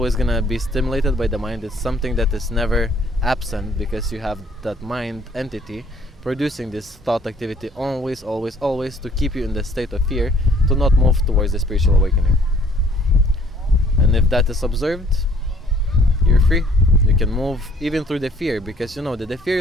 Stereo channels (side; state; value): both; normal; correlation 0.59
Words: gonna be stimulated by the mind. It's something that is never absent because you have that mind entity producing this thought activity always to keep you in the state of fear, to not move towards the spiritual awakening. And if that is observed, you're free. You can move even through the fear because you know that the fear